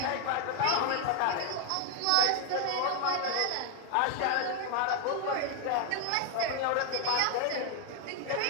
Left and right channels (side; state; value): both; different; correlation 0.00